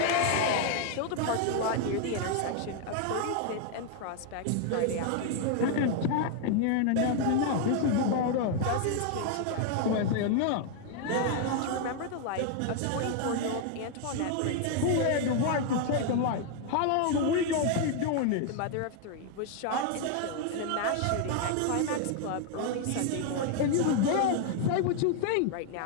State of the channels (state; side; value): different; both; correlation 0.00